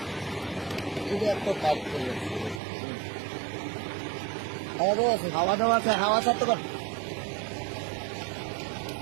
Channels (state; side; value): drops out; left; at 2.6 s